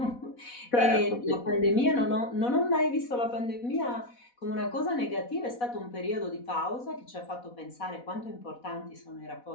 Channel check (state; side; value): late; right; 4.1 ms